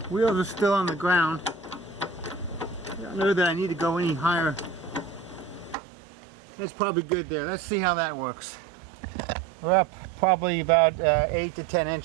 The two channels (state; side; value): drops out; left; at 5.8 s